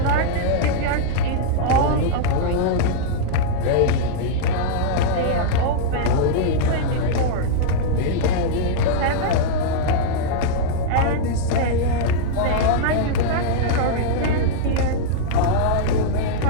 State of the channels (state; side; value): different; both; correlation -0.02